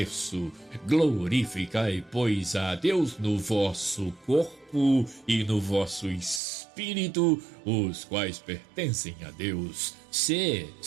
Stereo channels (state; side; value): drops out; left; at 6.4 s